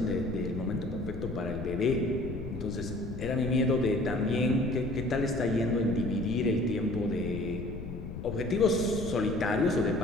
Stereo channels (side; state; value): left; noise; rumble, 8 dB below the sound